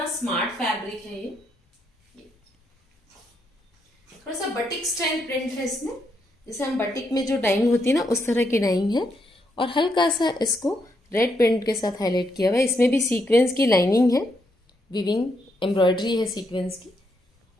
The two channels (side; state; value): both; normal; correlation 0.78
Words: स्मार्ट फैब्रिक है ये। थोड़ा सा बटिक स्टाइल प्रिंट है इसमें, जैसे हम बटिक में जो डाइंग होती है ना उस तरह की डाइंग है, और हल्का सा इसको रेड प्रिंट के साथ हाईलाइट किया हुआ है। इसमें भी सीक्वेंस की लाइनिंग है, विविंग एम्ब्रॉयडरी है सीक्वेंस की,